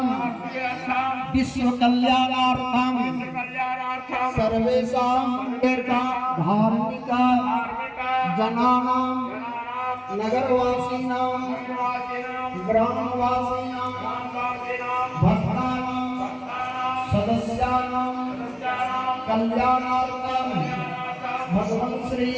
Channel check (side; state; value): both; identical; correlation 1.00